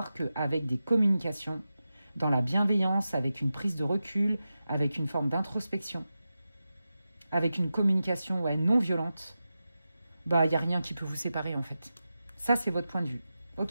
qu'avec des communications, dans la bienveillance, avec une prise de recul, avec une forme d'introspection, avec une communication non violente, bah il n'y a rien qui peut vous séparer en fait. Ça, c'est votre point de vue.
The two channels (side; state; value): both; inverted; correlation -0.92